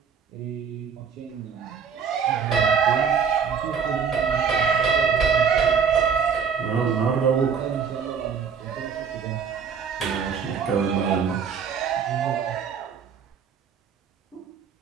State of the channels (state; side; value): quieter; left; 6.5 dB